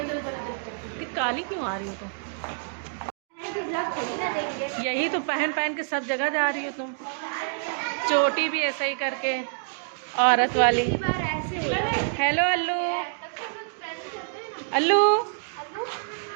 काली क्यों आ रही हो तुम? यही तो पहन पहन के सब जगह जा रही हो तुम। चोटी भी ऐसा ही करके औरत वाली। हेलो अल्लू, अल्लू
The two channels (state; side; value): silent; left; digital silence